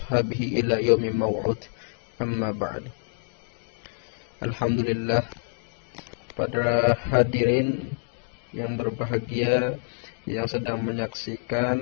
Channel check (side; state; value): right; silent; digital silence